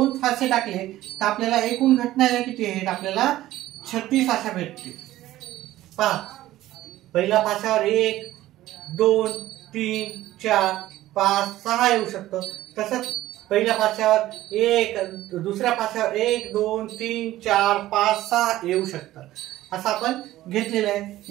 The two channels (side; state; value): left; quieter; 15.2 dB